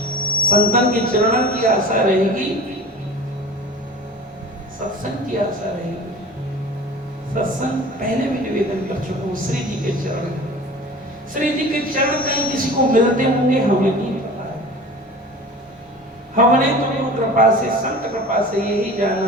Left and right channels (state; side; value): normal; both; correlation 0.39